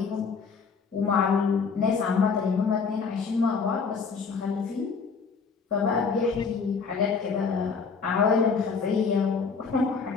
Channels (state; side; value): quieter; right; 5.3 dB